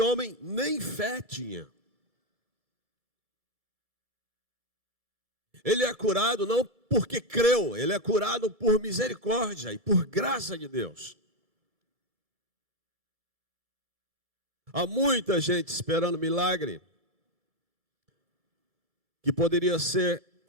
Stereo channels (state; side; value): late; left; 2.3 ms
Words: nem fé tinha. Ele é curado não porque creu, ele é curado por misericórdia e por graça de Deus. Há muita gente esperando milagre que poderia ser